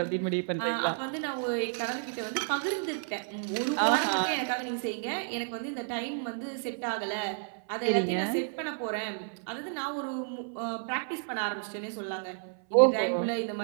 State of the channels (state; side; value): silent; left; 57 dB below the other